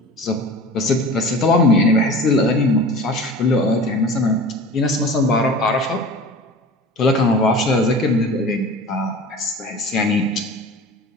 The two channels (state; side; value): normal; both; correlation 0.38